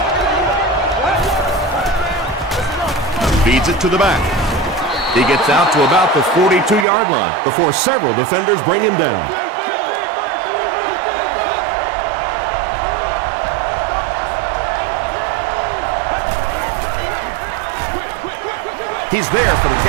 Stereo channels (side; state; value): left; drops out; at 6.9 s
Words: Feeds it to the back. He gets out to about the 42-yard line before several defenders bring him down. He's there for the